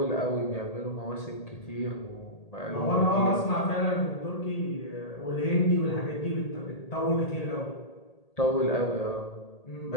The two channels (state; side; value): late; right; 1.8 ms